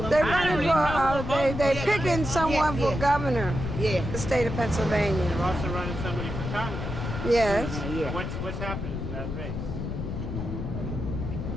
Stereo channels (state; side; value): noise; left; rumble, 5 dB below the sound